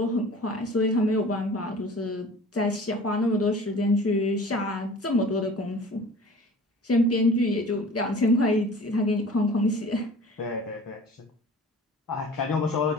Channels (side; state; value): both; normal; correlation 0.44